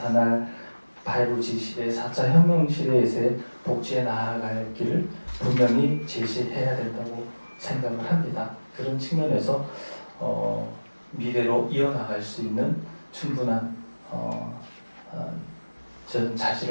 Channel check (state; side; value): inverted; both; correlation -1.00